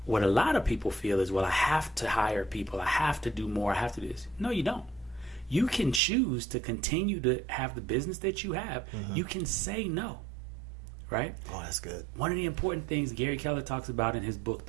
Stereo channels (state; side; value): drops out; left; at 6.0 s